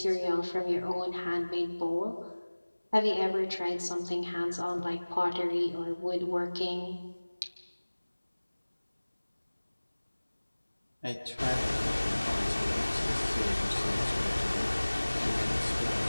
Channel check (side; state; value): both; inverted; correlation -1.00